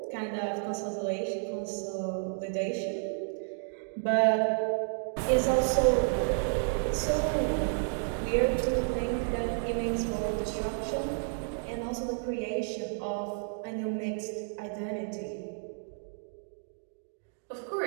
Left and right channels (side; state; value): left; silent; digital silence